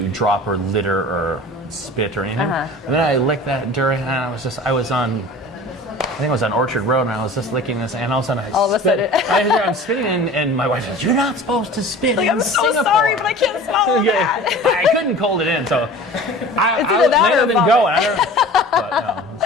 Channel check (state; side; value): normal; both; correlation 0.40